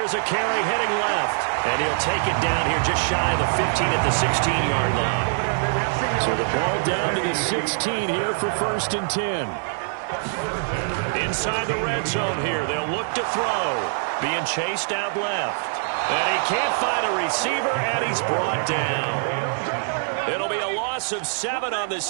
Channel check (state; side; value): silent; left; digital silence